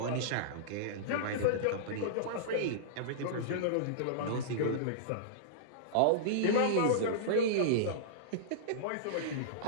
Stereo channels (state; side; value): different; both; correlation -0.03